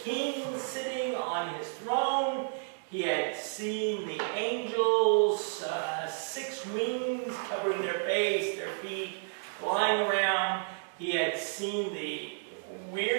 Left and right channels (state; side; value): silent; left; digital silence